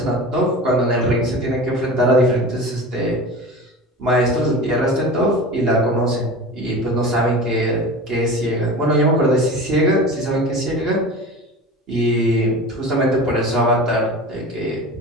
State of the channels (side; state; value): both; normal; correlation 0.33